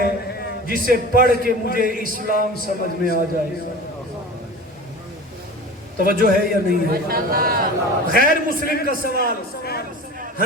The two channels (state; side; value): normal; both; correlation 0.35